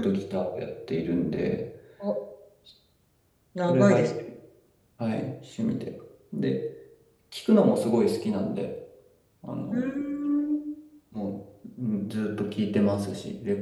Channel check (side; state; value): both; identical; correlation 1.00